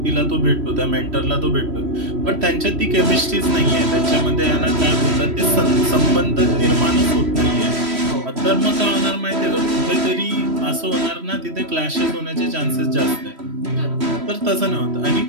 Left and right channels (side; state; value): left; late; 3.1 ms